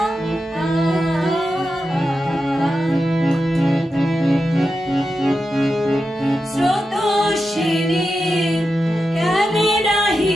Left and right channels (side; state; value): both; normal; correlation 0.89